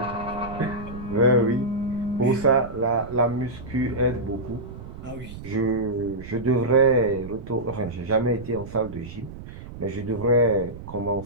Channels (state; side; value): noise; right; rumble, 13 dB below the sound